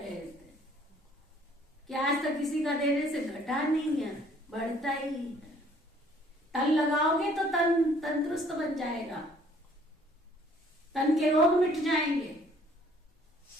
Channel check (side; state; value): both; normal; correlation 0.59